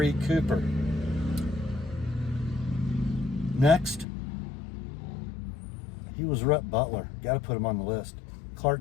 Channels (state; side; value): drops out; right; at 4.0 s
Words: Cooper. Next. He was Rhett Butler. Got to put him on the list.